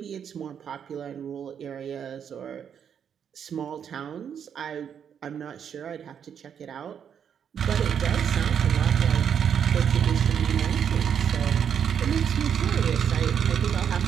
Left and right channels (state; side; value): quieter; left; 8.1 dB